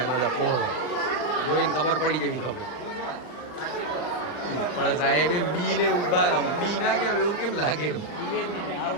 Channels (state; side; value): late; right; 40 ms